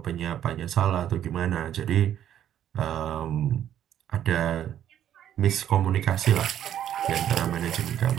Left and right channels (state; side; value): quieter; left; 10.6 dB